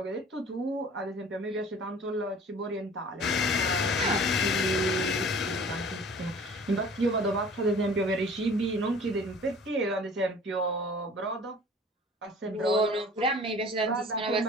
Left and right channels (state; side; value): normal; both; correlation 0.47